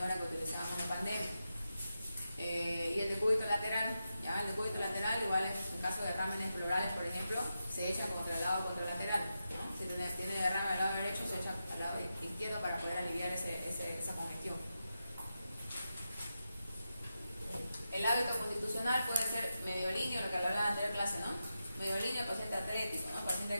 que utilizábamos en pandemia. Y el decúbito lateral, ¿ya? El decúbito lateral, igual en caso de derrames pleurales, por ejemplo, se echa contra el lado contralateral, ¿no? Si tiene derrame al lado derecho, se echa al lado izquierdo para poder aliviar esa congestión. El hábito constitucional puede ser mediolíneo, lo que hablaba en la anterior clase, ¿no? Mediolíneo, paciente atlético, ¿no?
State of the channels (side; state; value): both; inverted; correlation -0.89